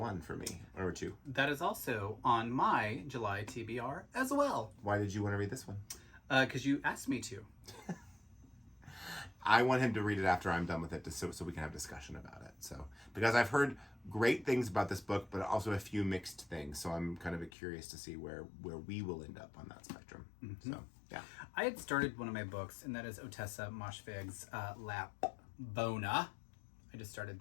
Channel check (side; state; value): right; drops out; at 17.5 s